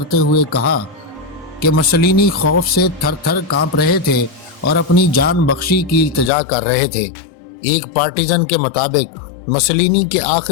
हुए कहा कि मुसोलिनी खौफ से थर थर कांप रहे थे और अपनी जान बख्शी की इल्तिजा कर रहे थे। एक पार्टिजन के मुताबिक मुसोलिनी के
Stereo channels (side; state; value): right; drops out; at 6.3 s